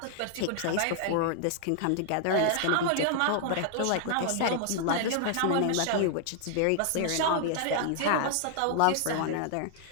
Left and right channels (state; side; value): different; both; correlation 0.00